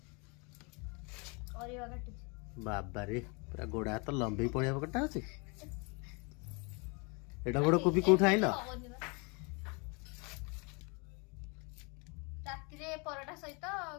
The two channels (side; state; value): right; quieter; 31.4 dB